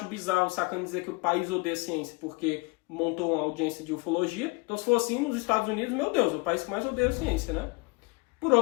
bizarro o Sacani dizer que o país odeia ciência porque montou uma audiência de ufologia, então se for assim, nos Estados Unidos, meu Deus, é o país que mais odeia a ciência, né? Por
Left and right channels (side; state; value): right; quieter; 27.4 dB